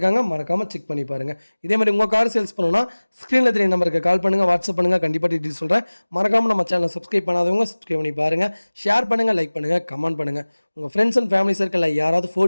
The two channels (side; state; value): both; inverted; correlation -1.00